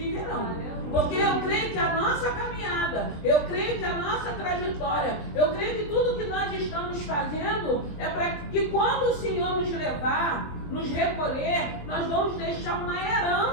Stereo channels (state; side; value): late; right; 20 ms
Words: Porque eu creio que a nossa caminhada, eu creio que a nossa trajetória, eu creio que tudo que nós estamos fazendo é para que quando o Senhor nos levar, nos recolher, nós vamos deixar uma